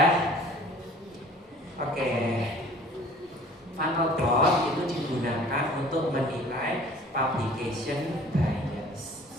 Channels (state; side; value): normal; both; correlation 0.49